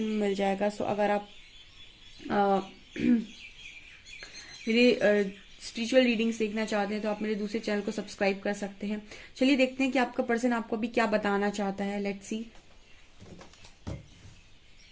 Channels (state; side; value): identical; both; correlation 1.00